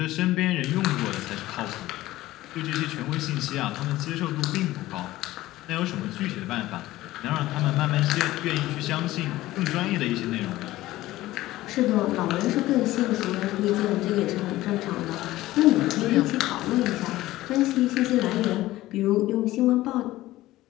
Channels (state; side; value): quieter; right; 16.5 dB